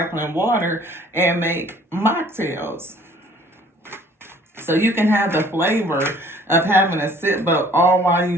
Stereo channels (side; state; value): both; normal; correlation 0.55